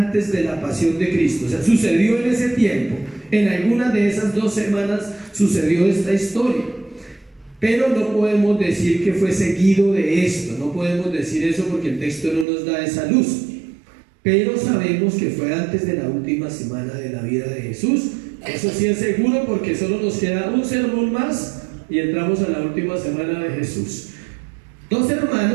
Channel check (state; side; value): drops out; left; at 12.5 s